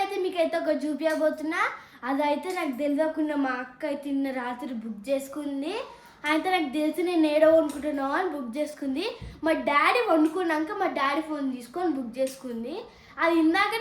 మీకైతే ఒక చూపించబోతున్నా. అదైతే నాకు తెలియకుండా మా అక్క అయితే నిన్న రాత్రి బుక్ చేసుకుంది. అయితే నాకు తెలిసి నేను ఏడో వండుకుంటున్నావు అని బుక్ చేసుకుంది. మా డాడీ వండుకున్నాక మా డాడీ ఫోన్ తీసుకొని బుక్ చేసుకుంది. అది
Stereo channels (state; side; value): identical; both; correlation 1.00